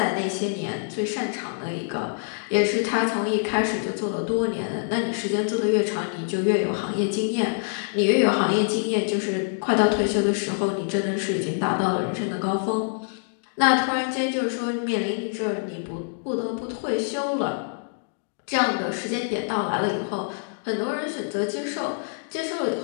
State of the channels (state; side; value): silent; right; digital silence